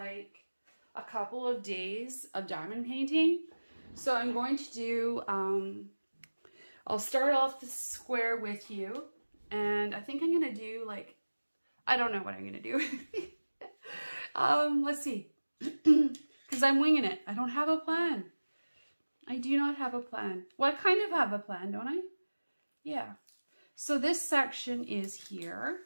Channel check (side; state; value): both; inverted; correlation -1.00